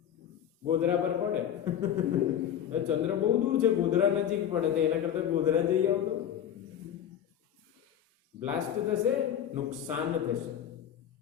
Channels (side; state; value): right; quieter; 9.8 dB